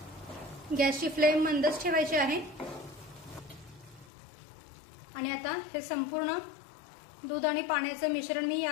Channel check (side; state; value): right; drops out; at 4.1 s